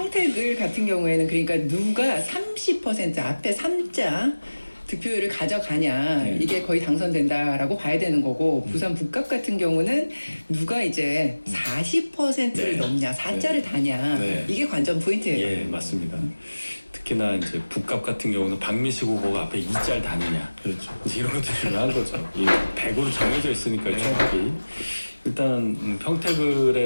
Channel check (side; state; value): both; inverted; correlation -1.00